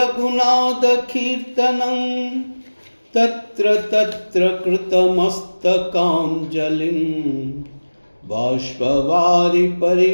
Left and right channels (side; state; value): both; inverted; correlation -1.00